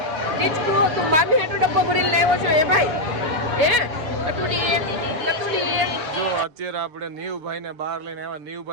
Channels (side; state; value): left; late; 6.8 ms